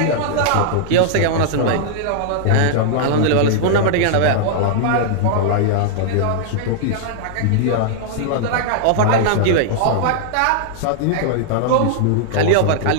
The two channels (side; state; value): both; different; correlation -0.01